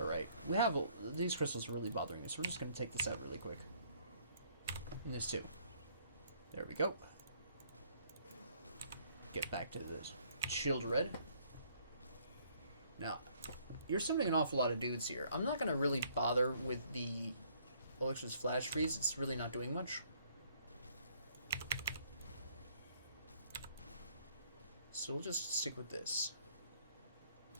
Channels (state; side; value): inverted; both; correlation -0.64